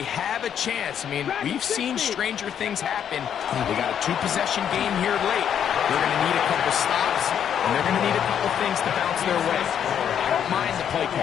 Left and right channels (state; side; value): quieter; right; 8.9 dB